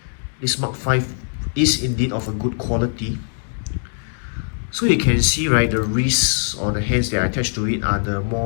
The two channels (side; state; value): right; silent; 64 dB below the other